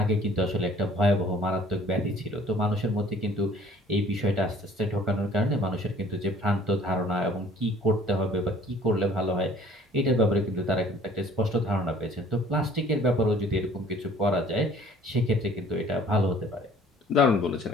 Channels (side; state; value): both; normal; correlation 0.53